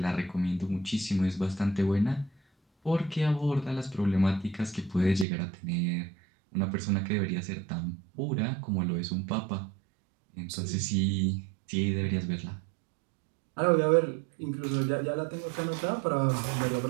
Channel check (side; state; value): left; drops out; at 5.2 s